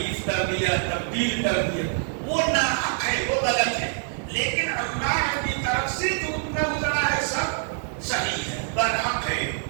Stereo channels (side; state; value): left; silent; 61 dB below the other